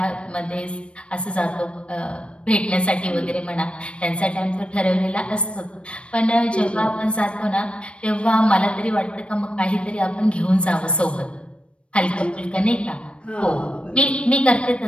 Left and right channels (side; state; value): right; late; 0.059 ms